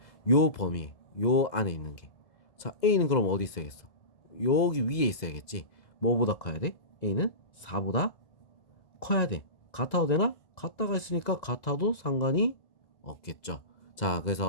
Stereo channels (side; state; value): right; late; 1.9 ms